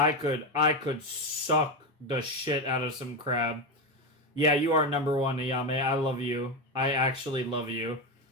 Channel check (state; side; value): normal; both; correlation 0.12